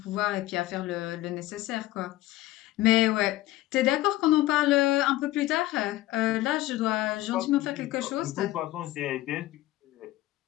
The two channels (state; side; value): quieter; right; 16.4 dB